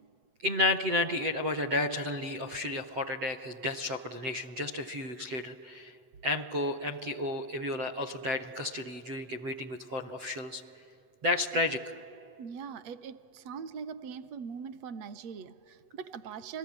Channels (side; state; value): left; late; 8.1 ms